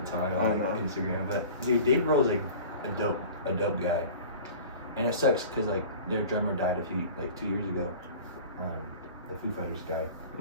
time on like Instagram. But dude, Dave Grohl's like a dope guy, and it sucks because like their drummer died 2 years ago. The Foo Fighters guy.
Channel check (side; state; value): both; inverted; correlation -0.40